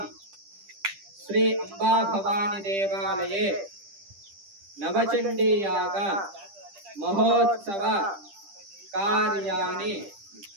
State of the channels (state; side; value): late; left; 10 ms